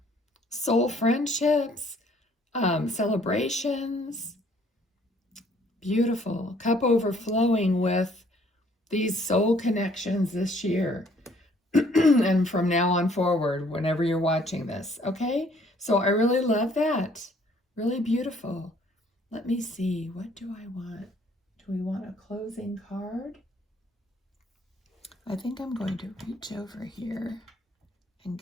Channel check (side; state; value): both; normal; correlation 0.61